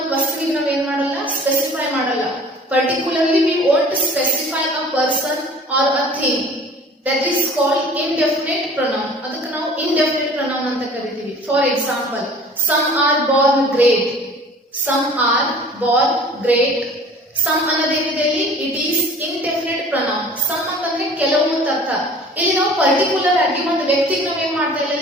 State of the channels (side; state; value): both; normal; correlation 0.47